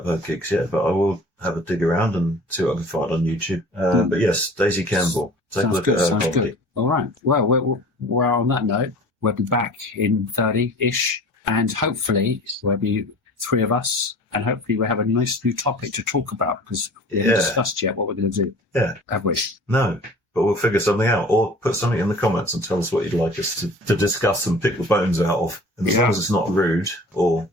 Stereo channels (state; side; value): normal; both; correlation 0.43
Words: her gigs yet, but I will have a dig around and see what I can find on YouTube. But yes, Daisy Campbell. Take a look at her comedy. Good. All right. Well, we're on that note. We'll be back in 30-ish, and hopefully there'll be 3 of us, and hopefully we'll have a nice new topic to talk about, because we haven't discussed yet what we're going to do. Yeah. Have we? No. But we'll figure something out, or put something in the comments and tell us what you'd like us to discuss and pick the bones out of. And as long as it's not rude or